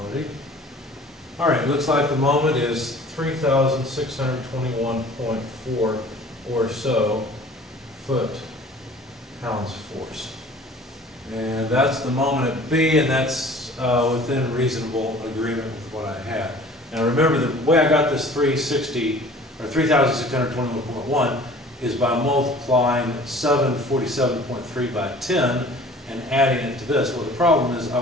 All right, looks like the moment is 3,621.4 or so foot-pounds force. And that's the moment at B, and that's within reasonable agreement with what I had. Now remember, the way I got this 3,621.1 is by multiplying 747.3 by 10 and adding it to this. Well, the problem is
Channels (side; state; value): both; normal; correlation 0.48